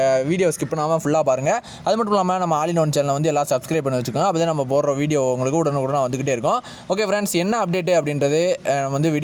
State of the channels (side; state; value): both; identical; correlation 1.00